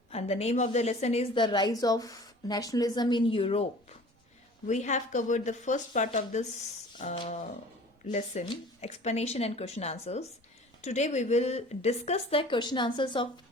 and the name of the lesson is The Rise of Nationalism in Europe. We have covered the first part of this lesson, explanation and question answers. Today we will discuss the question answers of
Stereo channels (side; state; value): both; normal; correlation 0.45